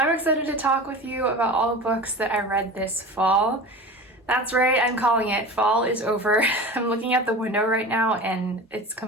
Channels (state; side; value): normal; both; correlation 0.33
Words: excited to talk with you about all the books that I read this fall. That's right, I'm calling it. Fall is over. I'm looking at the window right now and it's